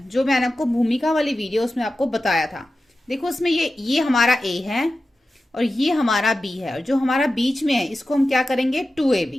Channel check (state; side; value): normal; both; correlation 0.93